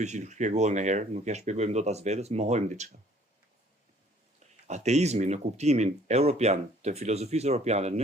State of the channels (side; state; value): both; normal; correlation 0.57